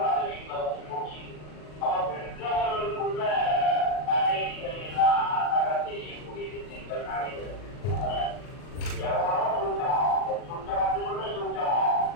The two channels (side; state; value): right; late; 40 ms